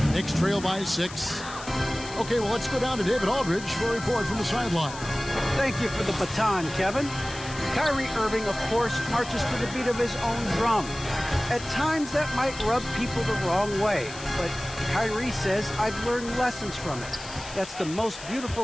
Knicks trail by 6. Okay, well, let's go down to David Aldridge for a report from the sideline. Thank you for the baton, Kevin. Kyrie Irving, of course, marches to the beat of his own drum. At times, that might rub people the wrong way, but Kyrie says, I've learned lessons from it. That's the most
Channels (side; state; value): left; noise; hiss, 14 dB below the sound